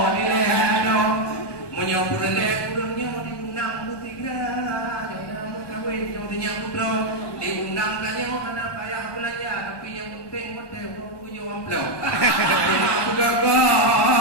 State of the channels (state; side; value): late; right; 1.2 ms